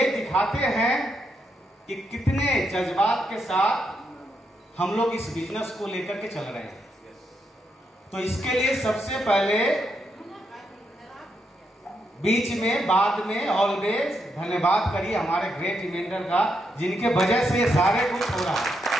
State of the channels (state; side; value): normal; both; correlation 0.80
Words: दिखाते हैं कि कितने जज्बात के साथ हम लोग इस बिजनेस को लेकर के चल रहे हैं। तो इसके लिए सबसे पहले बीच में बाद में ऑलवेज धन्यवाद करिए हमारे ग्रेट इवेंटर का, जिनके वजह से ये सारे कुछ हो रहा है,